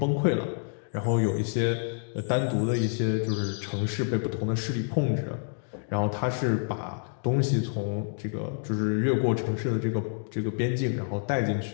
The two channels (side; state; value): right; silent; digital silence